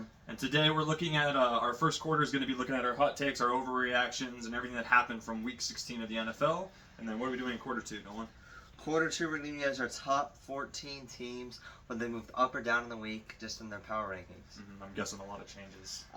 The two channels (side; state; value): both; identical; correlation 1.00